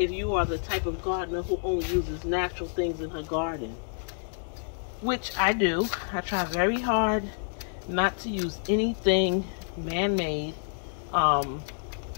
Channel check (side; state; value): right; silent; digital silence